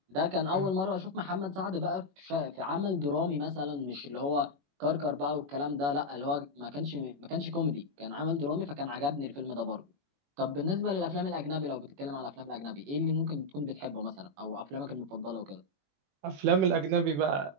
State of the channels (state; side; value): late; left; 21 ms